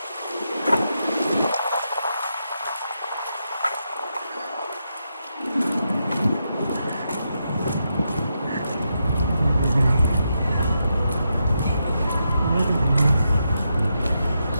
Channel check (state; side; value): inverted; both; correlation -0.84